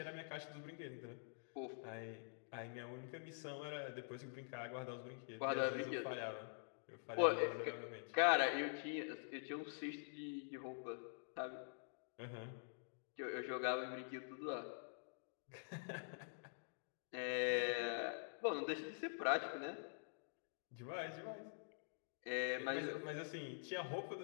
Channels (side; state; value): right; silent; digital silence